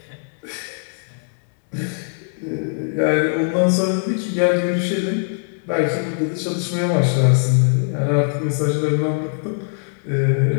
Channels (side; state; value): right; silent; digital silence